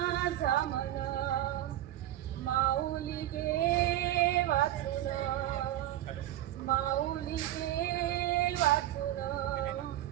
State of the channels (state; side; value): quieter; left; 13.7 dB